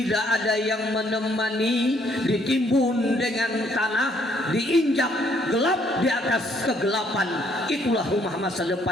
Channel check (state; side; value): normal; both; correlation 0.67